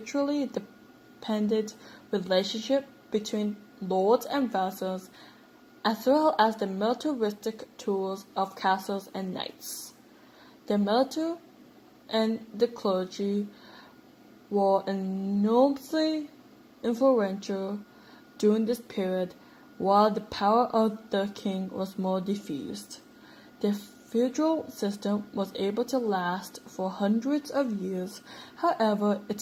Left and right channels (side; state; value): both; identical; correlation 1.00